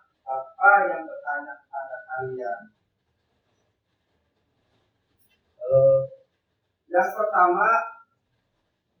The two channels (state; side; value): identical; both; correlation 1.00